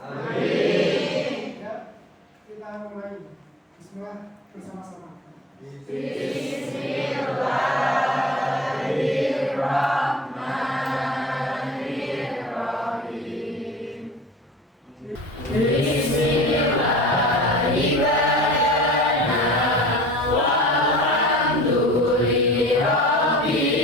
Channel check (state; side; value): normal; both; correlation 0.41